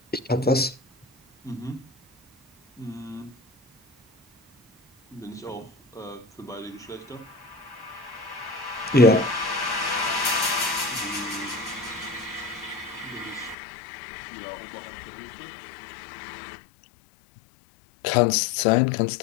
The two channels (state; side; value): drops out; right; at 13.6 s